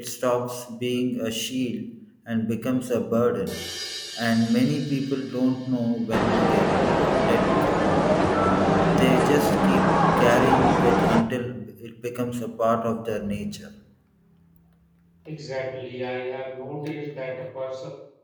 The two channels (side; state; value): both; identical; correlation 1.00